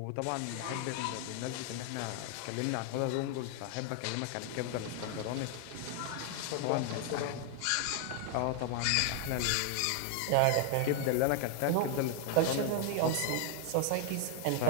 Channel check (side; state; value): both; different; correlation 0.00